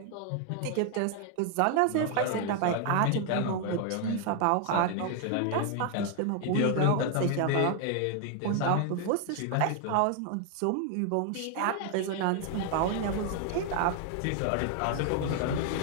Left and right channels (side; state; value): both; different; correlation 0.00